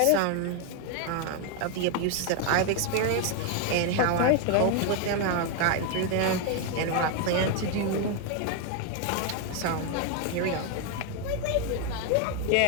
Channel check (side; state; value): both; different; correlation 0.01